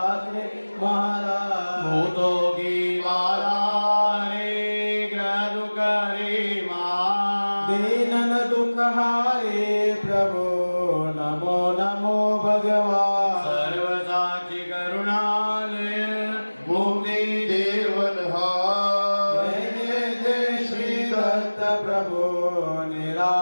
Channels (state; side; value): inverted; both; correlation -1.00